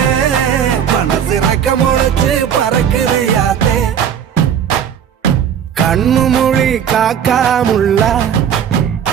மனசு ரக்க முளைச்சு பறக்குது யாத்தே கண்ணு மொழி காக்காமுள்ள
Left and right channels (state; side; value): quieter; left; 8.6 dB